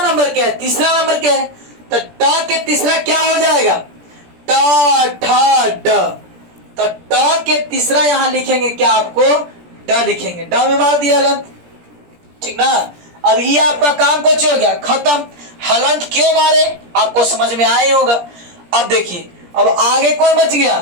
नंबर के है, तीसरा नंबर के है, तो ट के तीसरा क्या हो जाएगा, ट ठ ड, तो ट के तीसरा यहां लिखेंगे क्या, आपको ड लिखेंगे, ड में मार दिया हलंत, ठीक ना। अब ये आपका काम कुछ हो गया, खत्म। हलंत क्यों मारे आपको समझ में आया ही होगा। अब देखिए अब आगे कौन बच गया,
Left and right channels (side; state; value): left; late; 17 ms